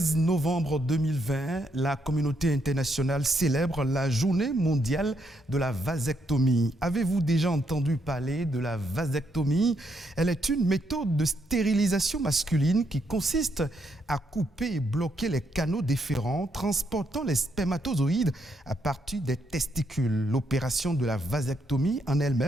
novembre 2020, la communauté internationale célèbre la journée mondiale de la vasectomie. Avez-vous déjà entendu parler de la vasectomie? Elle est une méthode de stérilisation masculine qui consiste à couper et bloquer les canaux déférents transportant les spermatozoïdes à partir des testicules. L'opération de la vasectomie en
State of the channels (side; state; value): both; normal; correlation 0.76